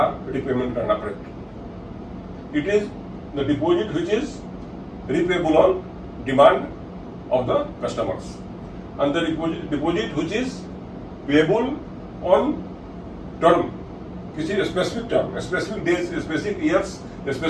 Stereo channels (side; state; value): both; identical; correlation 1.00